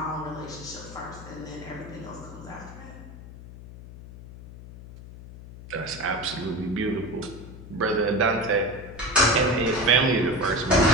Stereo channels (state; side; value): noise; left; hum, 15 dB below the sound